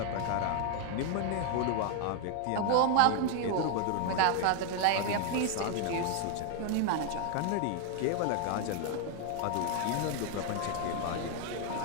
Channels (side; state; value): both; different; correlation 0.00